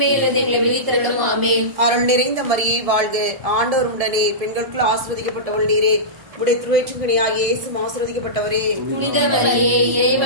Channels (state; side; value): late; left; 1.7 ms